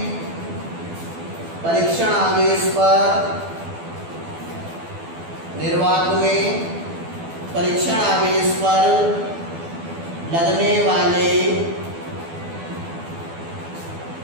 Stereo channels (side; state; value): left; late; 12 ms